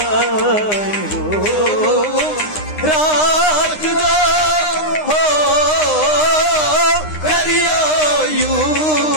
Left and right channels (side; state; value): right; late; 9.8 ms